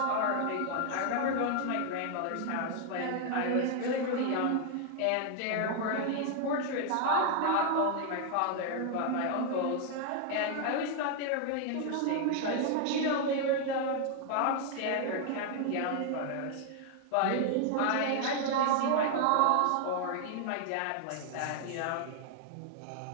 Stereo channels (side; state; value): both; different; correlation 0.00